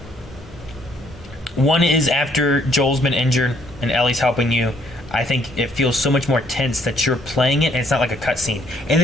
One is after Joel's been injured and Ellie's helping you. I think it feels so much more tense that you're playing it, and it's not like a cutscene. And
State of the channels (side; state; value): both; normal; correlation 0.67